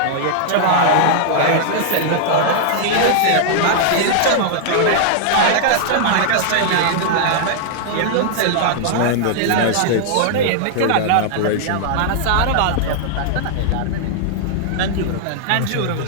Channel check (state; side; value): different; both; correlation -0.01